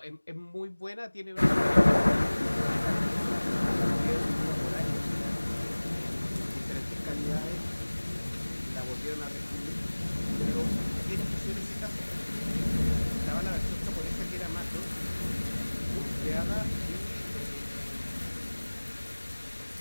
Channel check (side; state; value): both; inverted; correlation -1.00